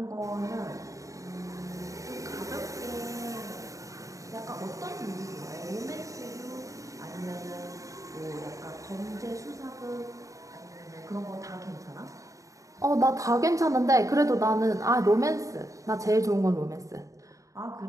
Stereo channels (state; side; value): late; left; 0.16 ms